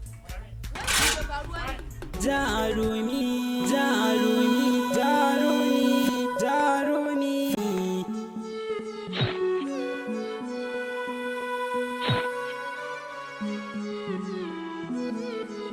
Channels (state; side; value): identical; both; correlation 1.00